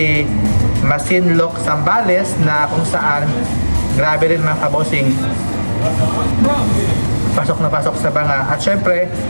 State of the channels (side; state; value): both; inverted; correlation -1.00